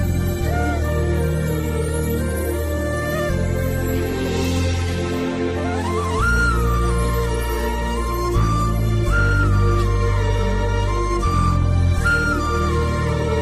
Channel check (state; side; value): identical; both; correlation 1.00